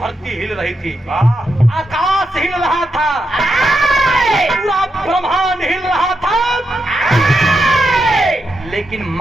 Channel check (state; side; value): normal; both; correlation 0.85